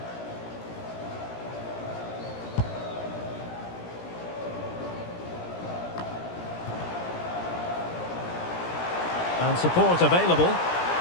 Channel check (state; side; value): late; right; 17 ms